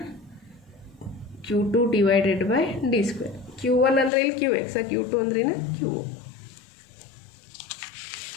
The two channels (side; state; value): right; drops out; at 4.1 s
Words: Q2 / d². Q1 ಅಂದರೆ ಇಲ್ಲಿ QX, Q2 ಅಂದ್ರೆ Q.